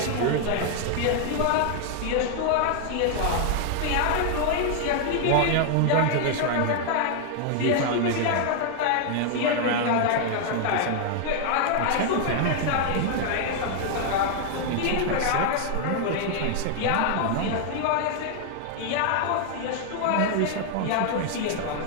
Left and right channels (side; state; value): both; different; correlation 0.00